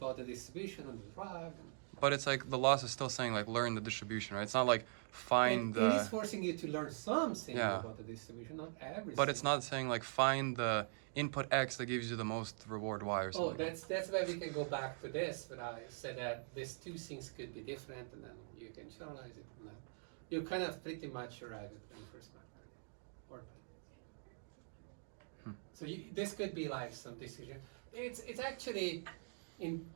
the distribution on the drug. But it's like the loss is still saying like learn the distribution, right? It's not like find It is the. forcing you to learn something Yeah. about the distribution, not everything. But it's not saying like find the input X that gives you the most reward Y or something. Oh, that's where we can go back to this, but I said that these two things could be different, and then you can generalize it. And then you kind of pretty much arrive at reinforcement learning. So this could be like some decision. It's actually, in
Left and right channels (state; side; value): silent; left; digital silence